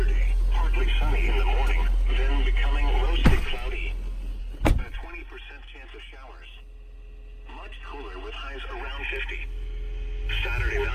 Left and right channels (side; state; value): both; identical; correlation 1.00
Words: partly sunny in the morning, then becoming mostly cloudy. A 20% chance of showers. Much cooler with highs around 50. Saturday